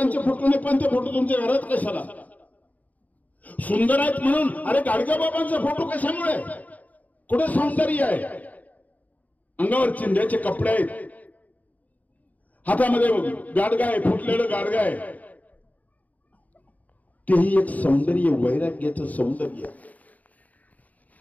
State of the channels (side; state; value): right; late; 0.074 ms